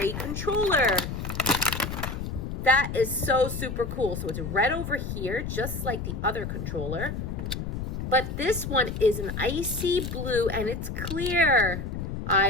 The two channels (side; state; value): left; noise; rumble, 5 dB below the sound